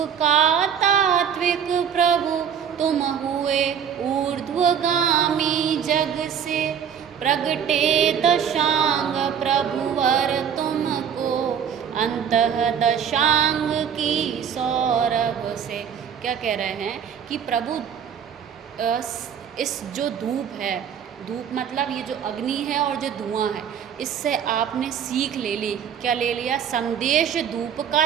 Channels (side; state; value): left; quieter; 8.1 dB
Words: का तात्विक प्रभु तुम हुए ऊर्ध्वगामी जग से, प्रगटे दशांग प्रभुवर तुमको अंतः दशांग की सौरभ से। क्या कह रहे हैं कि प्रभु इस जो धूप है, धूप मतलब ये जो अग्नि है और जो धुआं है, इससे आपने सीख ले ली। क्या ले लिया, संदेश धूप का